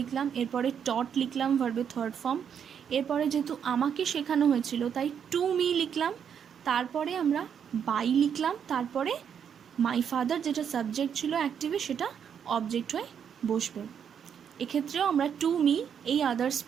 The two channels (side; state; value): left; quieter; 7.9 dB